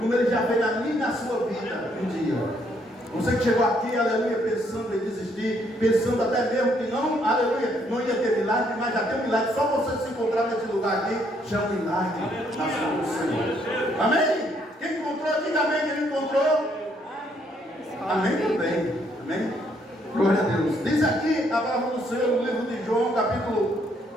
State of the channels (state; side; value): normal; both; correlation 0.70